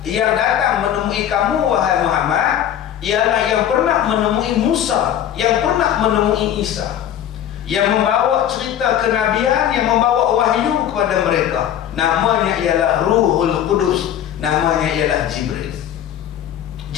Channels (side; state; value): right; quieter; 10.5 dB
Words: yang datang menemui kamu wahai Muhammad ialah yang pernah menemui Musa, yang pernah menemui Isa, yang membawa cerita kenabian, yang membawa wahyu kepada mereka. Namanya ialah Ruhul Qudus, namanya ialah Jibril.